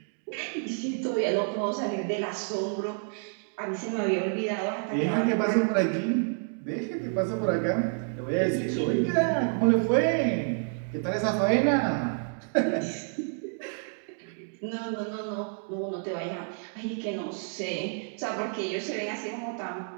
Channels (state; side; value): silent; left; 59 dB below the other